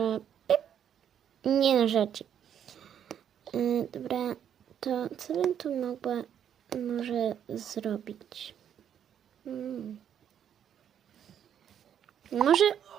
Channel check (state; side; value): quieter; left; 9.2 dB